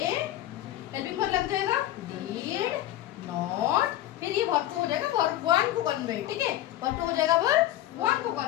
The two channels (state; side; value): quieter; right; 13.7 dB